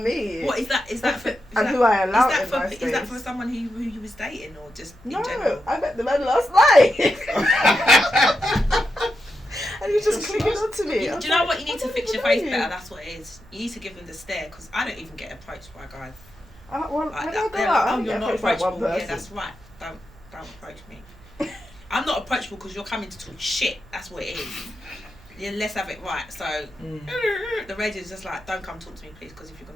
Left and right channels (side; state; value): right; noise; hum, 24 dB below the sound